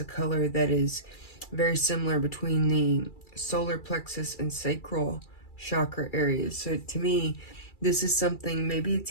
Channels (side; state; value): right; late; 2.3 ms